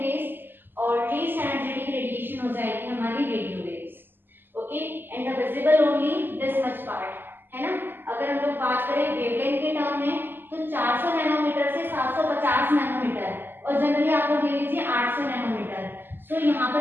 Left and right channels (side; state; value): left; late; 0.095 ms